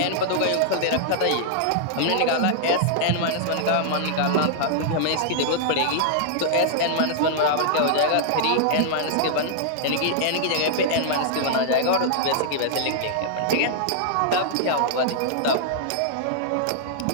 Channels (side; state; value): both; different; correlation -0.01